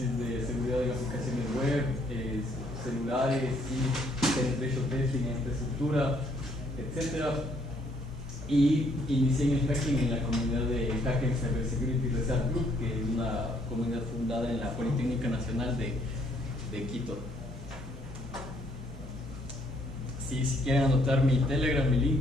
de seguridad de aplicaciones web, celulares, sí, penetration testing en infraestructura, etc. Y inicié en el hacking en la comunidad de Hacking Cybersecurity Research Group, que es una comunidad fundada en la Politécnica Nacional de Quito. Sí, si quieren anotar mi Telegram, mi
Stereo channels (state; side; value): normal; both; correlation 0.67